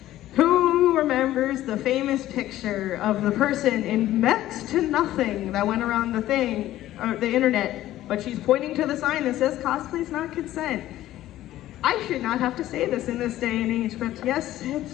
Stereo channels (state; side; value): quieter; right; 14.2 dB